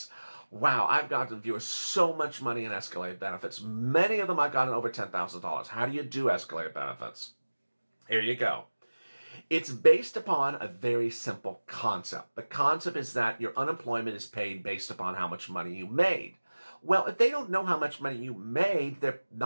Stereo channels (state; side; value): inverted; both; correlation -1.00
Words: Wow, I've gotten viewers so much money in escalated benefits. Many of them I've gotten over $10,000. How do you do escalated benefits? Here you go. It's based upon a very simple concept. The concept is that your unemployment is paid based upon how much money you made. Well, if they don't know how much money you made, they're